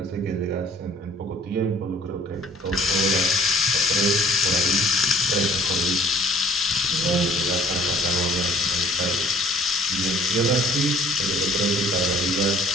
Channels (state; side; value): normal; both; correlation 0.54